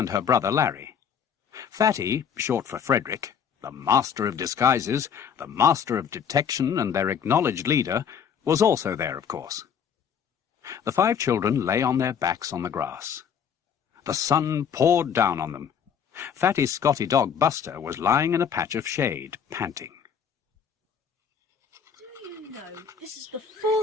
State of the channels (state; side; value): quieter; right; 7.6 dB